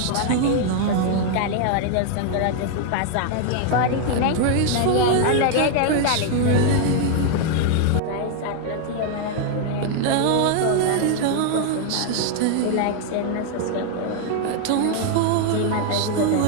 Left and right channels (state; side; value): different; both; correlation 0.00